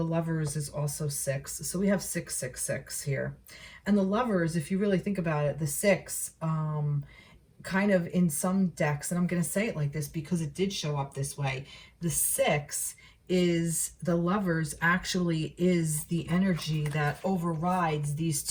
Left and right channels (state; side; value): identical; both; correlation 1.00